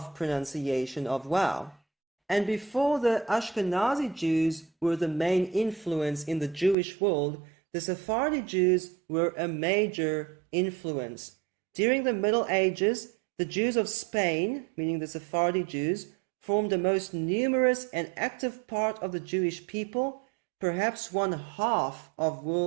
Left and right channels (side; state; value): left; drops out; at 6.8 s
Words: pronunciation of wow. And before the Ashkenazi Jews were the main influence in the Jewish world, the Sephardi Jews were a major influence. During the Middle Ages, the Jews of Spain, meaning the Sephardi Jews, formed the most numerous and active part of the Jewish people, perhaps 1/2 of